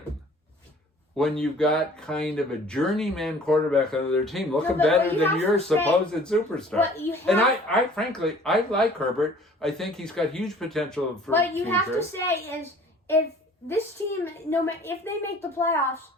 when you've got kind of a journeyman quarterback on their team looking but better what you than have your to say- supposed superstar. What you have, And I frankly, I like Herbert. I think he's got huge potential for what you future. have to say is, if this team, no matter if they make the playoffs,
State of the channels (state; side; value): normal; both; correlation 0.51